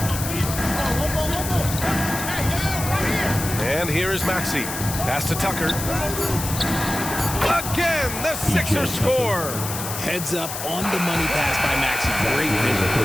And here is Maxey. Pass to Tucker. Again, the Sixers score. Heads up on the money pass by Maxey. Great vision.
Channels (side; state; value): left; noise; hiss, 6 dB below the sound